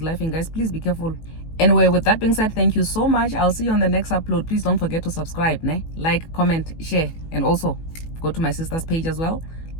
guys. Please be careful. Anyway, with that being said, thank you so much. I'll see you on the next upload. Please don't forget to subscribe, ne? Like, comment, share, and also go to my sister's page as well.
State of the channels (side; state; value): right; late; 18 ms